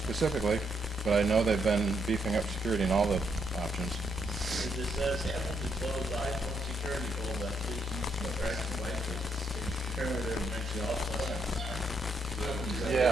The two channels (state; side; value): normal; both; correlation 0.76